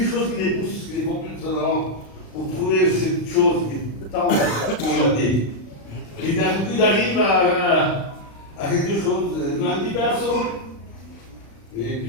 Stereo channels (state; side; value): late; right; 36 ms